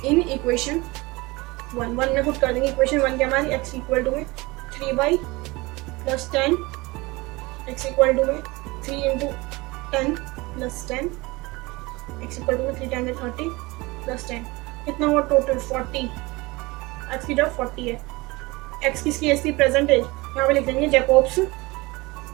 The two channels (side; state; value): left; quieter; 22.8 dB